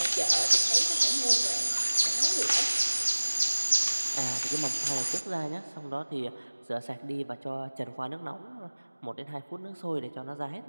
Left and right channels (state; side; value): inverted; both; correlation -1.00